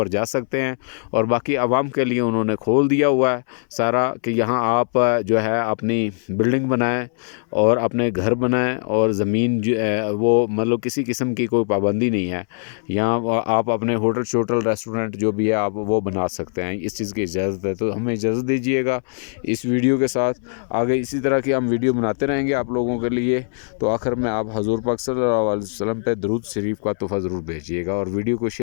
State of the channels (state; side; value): silent; right; 65 dB below the other